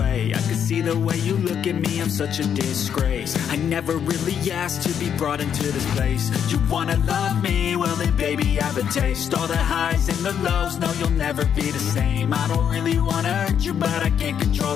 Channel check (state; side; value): quieter; right; 8.4 dB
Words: I can see the way you look at me, I'm such a disgrace. I never really asked to be brought into this place. You wanna love me? Well then baby I have a taste. All the highs and the lows, no you'll never be the same. I don't really wanna hurt you but I can't control